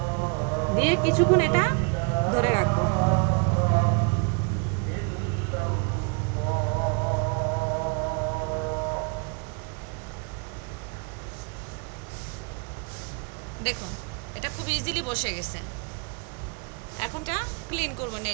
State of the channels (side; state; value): left; quieter; 34.7 dB